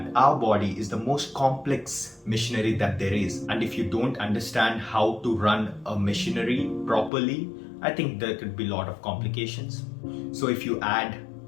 our body is the most complex machinery that there is. And if you don't understand how to run a machinery properly, I think there could be a lot of complications. So if you add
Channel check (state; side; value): drops out; right; at 7.1 s